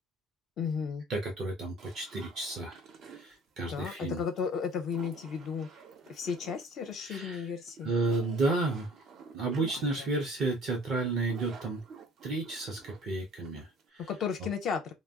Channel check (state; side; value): normal; both; correlation 0.50